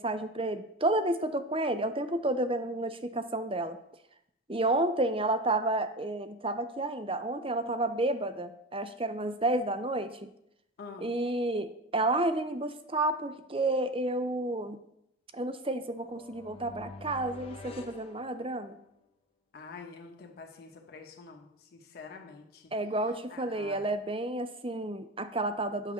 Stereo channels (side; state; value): both; normal; correlation 0.27